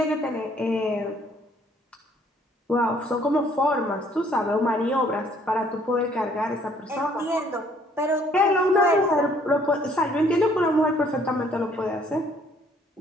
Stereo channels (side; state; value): both; normal; correlation 0.62